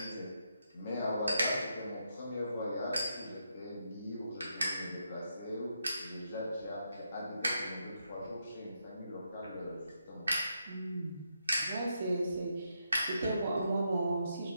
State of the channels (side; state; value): both; inverted; correlation -0.81